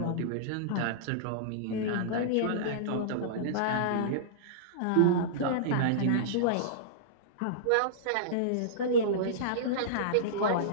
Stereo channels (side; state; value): both; different; correlation -0.03